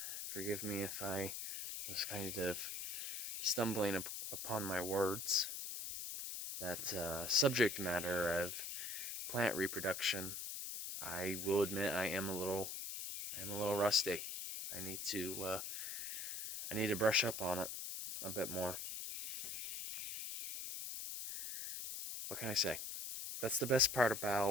Forgive me if I was kind of stumbling upon my words. That subject matter of plant reproduction, I will admit I am a little rusty. I need to brush up on it a bit more. What can I say? That's the best part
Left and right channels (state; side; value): noise; left; hiss, 4 dB below the sound